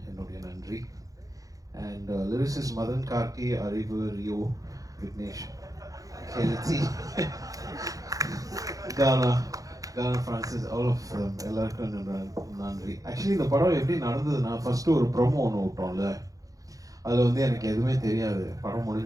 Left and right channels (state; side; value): late; left; 0.17 ms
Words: என்னுடைய நன்றி. And lyricist Madan Karki, Arivu, Rio, Vignesh, Kelti, Ghana Francis, all of them, எல்லாருக்கும் நன்றி. Actually இந்த படம் எப்படி நடந்ததுன்னா, ஃபர்ஸ்ட் ஒரு ப்ரோமோ ஒன்று விட்டோம்ல, அதில் வந்து எனக்கு எதுவுமே தெரியாது, படம்